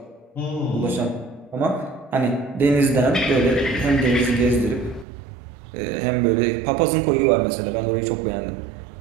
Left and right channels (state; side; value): drops out; left; at 5.1 s